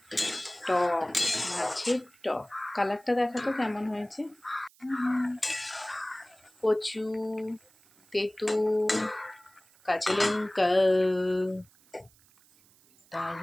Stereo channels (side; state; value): right; noise; hiss, 29 dB below the sound